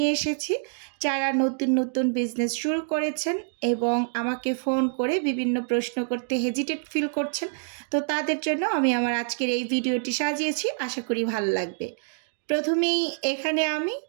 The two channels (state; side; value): silent; left; digital silence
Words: এসেছি। যারা নতুন নতুন বিজনেস শুরু করেছেন এবং আমাকে ফোন করে বিভিন্ন প্রশ্ন করতে হেজিটেট ফিল করছেন, তো তাদের জন্য আমি আমার আজকের এই ভিডিওটি সাজিয়েছি। আশা করি ভালো লাগবে। প্রথমেই এখানে আমি